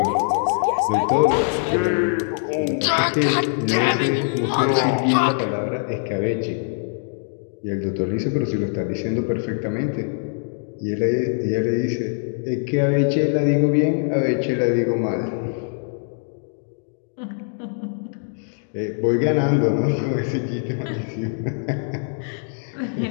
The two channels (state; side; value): silent; right; 64 dB below the other